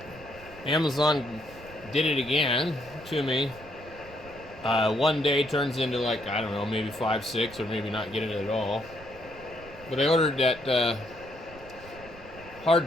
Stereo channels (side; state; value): right; noise; rumble, 19 dB below the sound